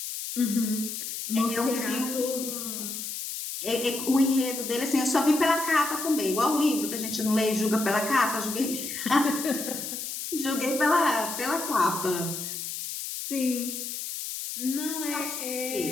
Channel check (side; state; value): left; noise; hiss, 6 dB below the sound